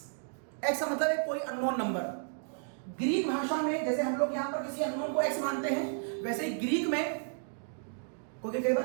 का मतलब है कोई अननोन नंबर। ग्रीक भाषा में जैसे हम लोग यहां पर किसी अननोन को x मानते हैं, वैसे ही ग्रीक में, क्योंकि कई बार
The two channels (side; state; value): left; silent; digital silence